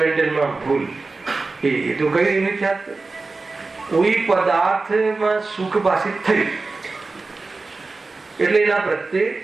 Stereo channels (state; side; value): quieter; left; 3.7 dB